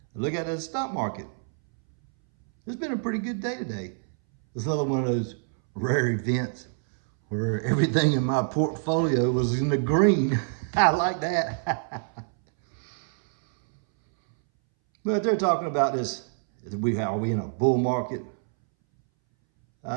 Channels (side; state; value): left; silent; 61 dB below the other